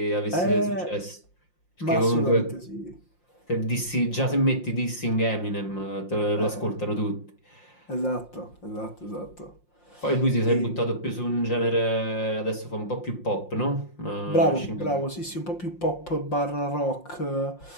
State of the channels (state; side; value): late; right; 5.7 ms